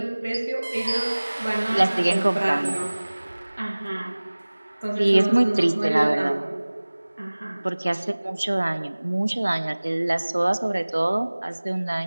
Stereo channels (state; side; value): inverted; both; correlation -1.00